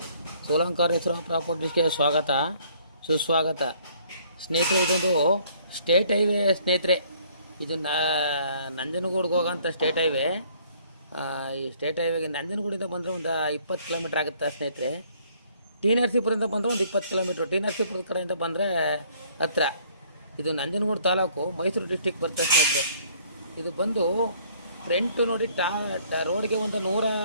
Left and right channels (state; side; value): inverted; both; correlation -0.61